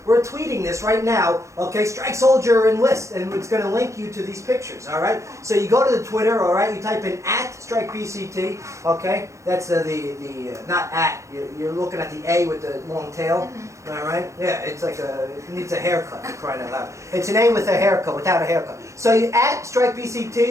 we're tweeting this right now, okay? Strike Soldier Enlist, and it's going to link you to these pictures, all right? So you go to the Twitter, all right? You type in @StrikeBCT, okay? That's the not at, you're looking at the A with the long tail, all right? Yeah, it's like it needs a haircut, for crying out loud. It's an A with a haircut, without a haircut. So you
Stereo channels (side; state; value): left; late; 0.15 ms